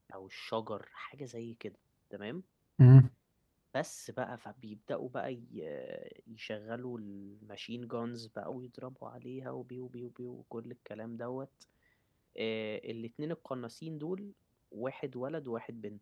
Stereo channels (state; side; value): identical; both; correlation 1.00